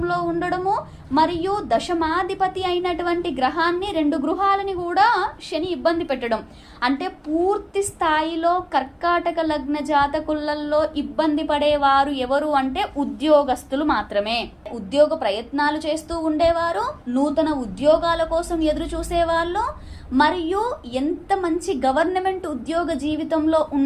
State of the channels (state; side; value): identical; both; correlation 1.00